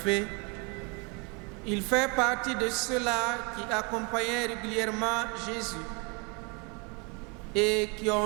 il fait partie de ceux-là qui accompagnaient régulièrement Jésus et qui ont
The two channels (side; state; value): left; quieter; 31.4 dB